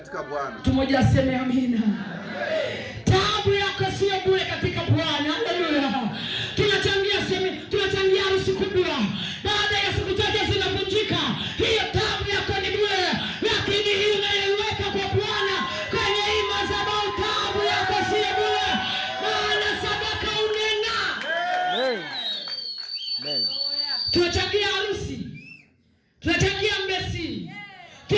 Bwana. Tumoja aseme amina. Taabu yako sio bure katika Bwana. Haleluya. Tunachangia harusi kubwa. Baada ya siku chache zinavunjika. Hiyo taabu yako ni bure. Lakini hii unaiweka kwa Bwana kwenye hii madhabahu, taabu yako sio bure. Maana sadaka unena. Amen. Tunachangia harusi. Tunachangia mbesi.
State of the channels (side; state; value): both; identical; correlation 1.00